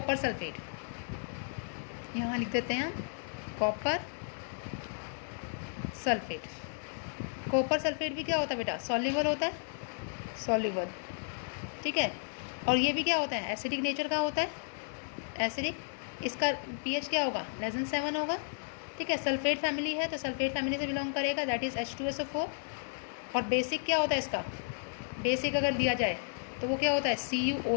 सल्फेट। यहाँ लिख देते हैं हम कॉपर सल्फेट। कॉपर सल्फेट भी क्या होता है बेटा, सॉल्युबल होता है, सॉल्युबल, ठीक है। और ये भी क्या होता है, एसिडिक नेचर का होता है, एसिडिक। इसका pH क्या होगा, <7 होगा, ठीक है। सल्फेट फैमिली है तो सल्फेट फैमिली से बिलोंग करेगा, दैट इज़ H2SO4। और बेसिक क्या होता है इसका, बेसिक अगर दिया जाए तो वो क्या होता है,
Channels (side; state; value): right; silent; 56 dB below the other